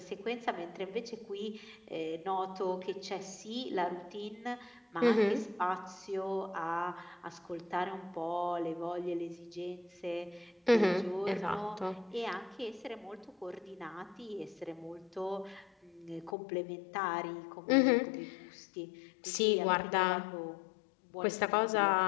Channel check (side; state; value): right; drops out; at 16.4 s